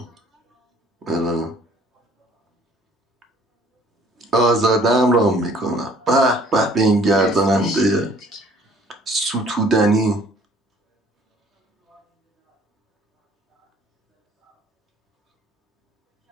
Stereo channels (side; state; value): both; normal; correlation 0.56